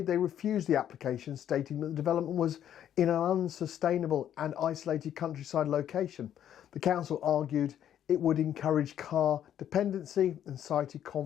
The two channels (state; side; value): quieter; right; 10.3 dB